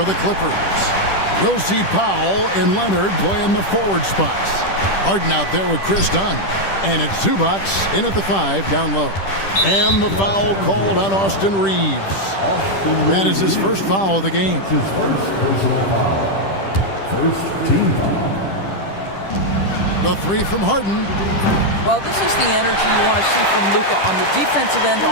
the Clippers. We'll see Powell and Leonard play in the forward spots. Harden out there with Chris Dunn. And it's Zubac in at the 5 down low. And the foul called on Austin Reeves. That is his first foul of the game. His first personal foul. First team foul. The 3 from Harden. Well, this is the energy you want to see from Luka on the defensive end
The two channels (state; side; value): late; right; 10 ms